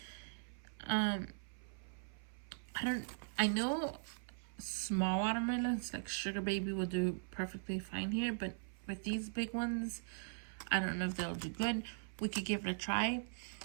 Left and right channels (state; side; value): silent; left; 51 dB below the other